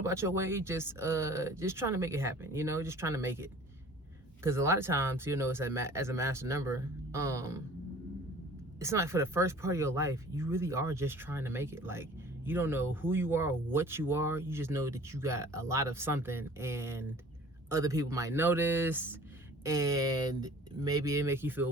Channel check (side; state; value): both; normal; correlation 0.48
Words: your way, just trying to make it happen, you know, just trying to make it. Because a lot of times, you know, as a master number, it's not like for the first part of your life, you really are just trying to make it. Like, you don't know who you are or what you are. You just know that you got a lot of something, and other people might notice, and maybe it make you